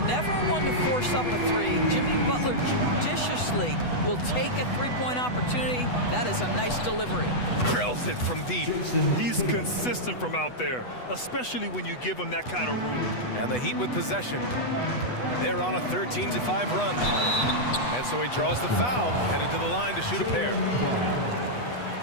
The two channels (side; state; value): right; late; 8.1 ms